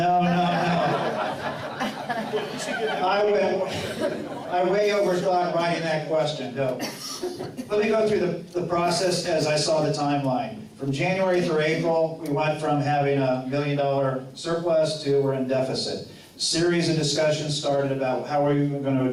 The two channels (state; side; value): identical; both; correlation 1.00